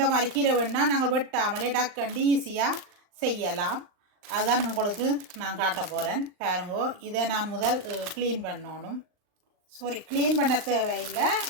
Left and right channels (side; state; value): left; late; 39 ms